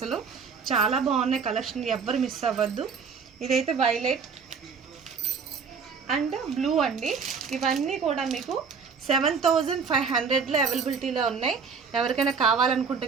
చాలా బాగున్నాయి కలెక్షన్, ఎవ్వరు మిస్ అవ్వద్దు. ఇదైతే వైలెట్ అండ్ బ్లూ అండి. ఇవన్నీ కూడా మీకు 7500లో అవైలబిలిటీలో ఉన్నాయి. ఎవరికైనా కావాలనుకుంటే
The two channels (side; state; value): left; quieter; 5.7 dB